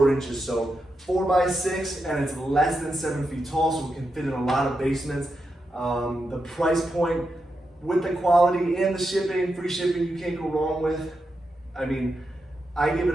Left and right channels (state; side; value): normal; both; correlation 0.86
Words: inches. So 4x6, and it's less than 7 feet tall, so we can fit in a lot of basements. The price point with the quality and the shipping, free shipping, you can't go wrong with. I mean, I give